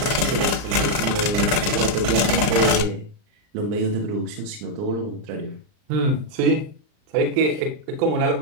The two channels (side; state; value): left; late; 39 ms